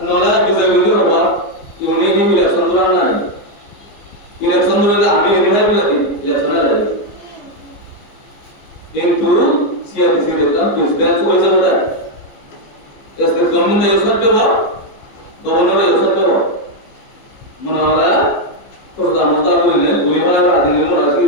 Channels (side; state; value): right; late; 14 ms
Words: নলা বিজয়বিন্দু হবা ইউনিয়ন ইলেকশন দরান নাই ইলেকশন দরালে আমি এখানে বলি ইলেকশন লাগে কিন্তু সিআরডিসি দেখতাম প্রেসিডেন্ট হয়ে যাবে তাই স্টেট গভর্নমেন্ট ইউজ করতে হবে গভর্নর ইউজ করতে হবে মনে হলা প্রধানমন্ত্রী বললেন বলিমালা প্রাধান্য রাখি